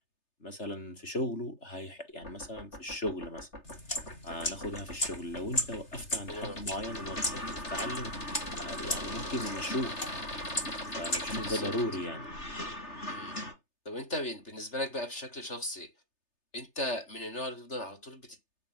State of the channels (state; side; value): late; right; 3.3 ms